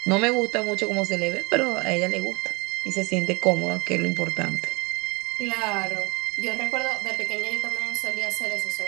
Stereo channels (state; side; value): quieter; left; 27.2 dB